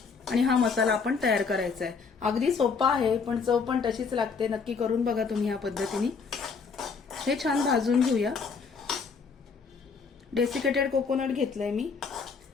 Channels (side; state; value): right; quieter; 5.3 dB